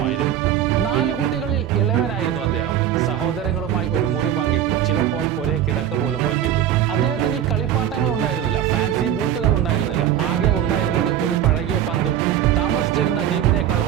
4 കുട്ടികളിൽ ഇളവനായിരുന്നു അദ്ദേഹം. സഹോദരങ്ങളുമായി ഒരു മുറി പങ്കിട്ടു, ചിലപ്പോൾ ഒരേ കിടക്ക പോലും പങ്കിട്ടു. അദ്ദേഹത്തിന് ഈ കളിപ്പാട്ടങ്ങൾ ഉണ്ടായിരുന്നില്ല, ഫാൻസി ബൂട്ടുകൾ ഉണ്ടായിരുന്നില്ല. ആകെ ഉണ്ടായിരുന്നത് ഒരു പഴകിയ പന്തും താമസിച്ചിരുന്ന ദ്വീപിനേക്കാൾ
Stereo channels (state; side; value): quieter; left; 10.6 dB